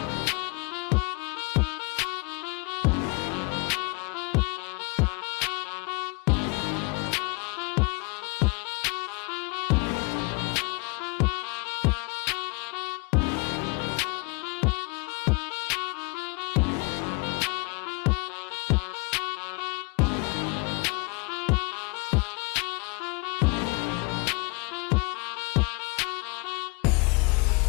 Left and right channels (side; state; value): right; quieter; 30.8 dB